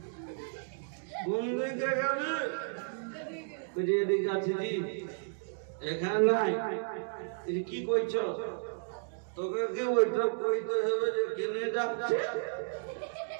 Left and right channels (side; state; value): left; silent; digital silence